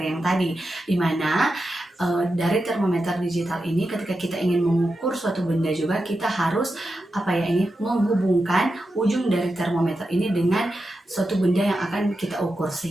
yang tadi, di mana dari termometer digital ini ketika kita ingin mengukur suatu benda juga kita harus menghubungkan ujung dari termometer ini dengan suatu benda yang akan kita ukur,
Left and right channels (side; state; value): both; normal; correlation 0.89